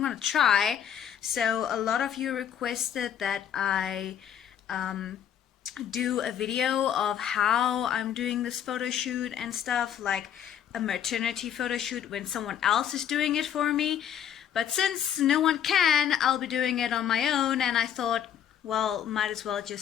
gonna try. So a lot of you requested that I do a video of how I'm doing this photo shoot and stuff, like a maternity photo shoot when someone else is doing it for me. But since no one can, I'll be doing it on my own, and I thought, well, might as well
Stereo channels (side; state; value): right; quieter; 9.4 dB